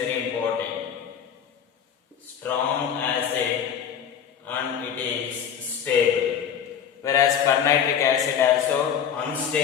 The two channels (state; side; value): quieter; right; 8.4 dB